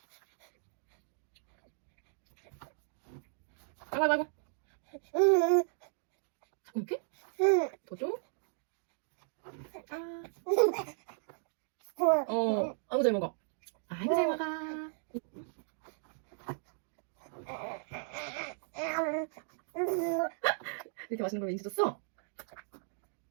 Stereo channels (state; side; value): silent; left; digital silence